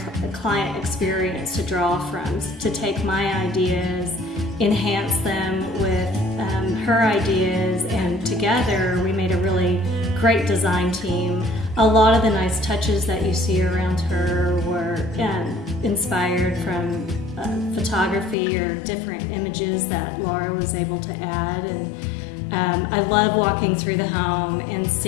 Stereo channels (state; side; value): drops out; right; at 18.4 s